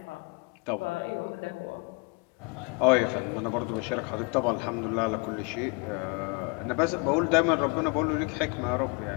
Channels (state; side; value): quieter; right; 31.1 dB